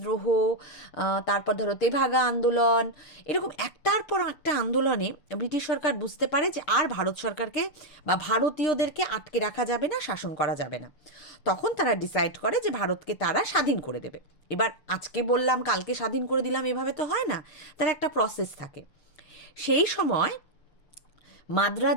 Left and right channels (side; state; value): right; late; 6.8 ms